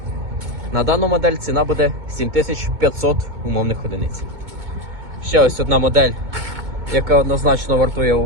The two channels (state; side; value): late; left; 2.2 ms